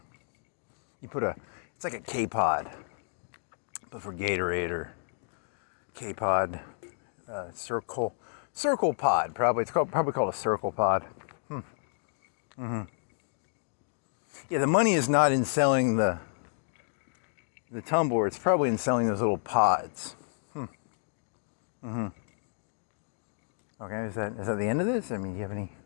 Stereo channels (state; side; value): silent; right; digital silence